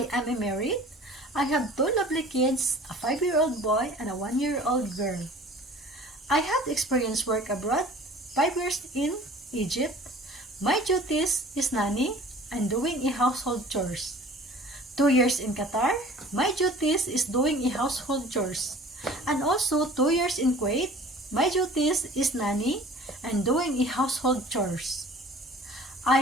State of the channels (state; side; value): normal; both; correlation 0.46